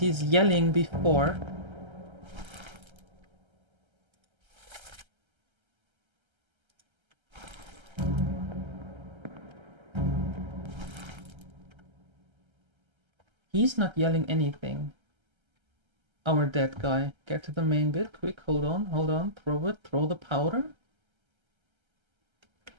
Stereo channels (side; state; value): left; late; 1.3 ms